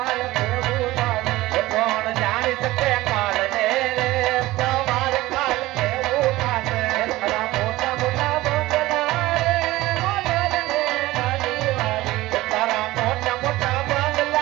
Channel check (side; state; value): left; quieter; 18.0 dB